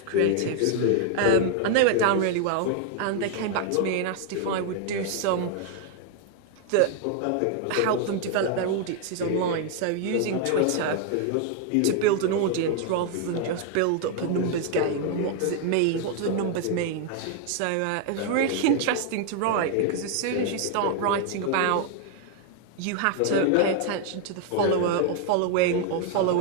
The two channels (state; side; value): different; both; correlation 0.00